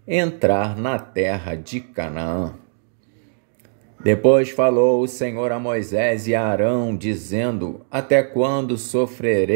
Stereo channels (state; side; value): silent; left; digital silence